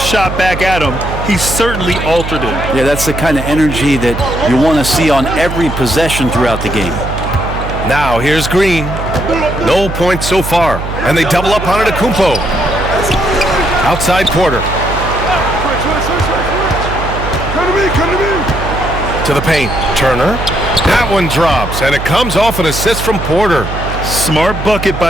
back at him, he certainly altered it. Yeah, that's the kind of energy that you want to see on every possession throughout the game. Now here's Green. No points so far. And they double up on it to Kumpo. Outside Porter. To the paint. Turner. That one drops, and it comes off an assist from Porter. Smart bucket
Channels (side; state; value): right; noise; hum, 6 dB below the sound